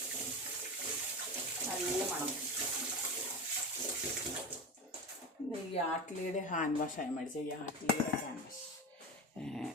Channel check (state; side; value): normal; both; correlation 0.24